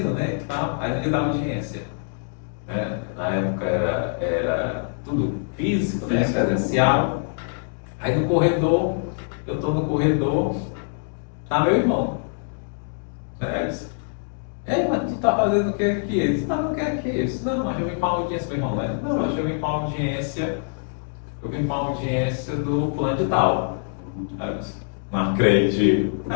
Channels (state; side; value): silent; right; digital silence